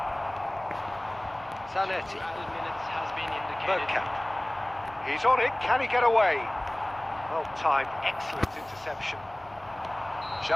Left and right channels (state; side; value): noise; left; hum, 25 dB below the sound